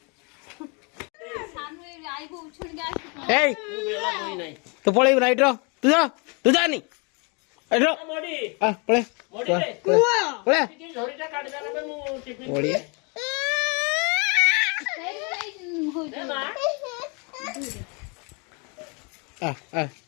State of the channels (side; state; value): right; quieter; 32.8 dB